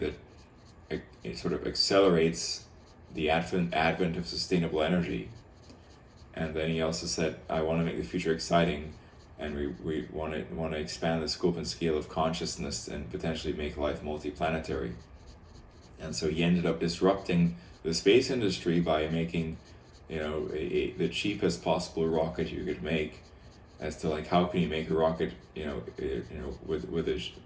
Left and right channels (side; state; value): both; identical; correlation 1.00